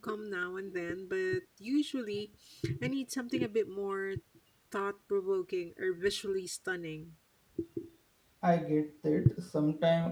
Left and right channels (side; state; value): both; identical; correlation 1.00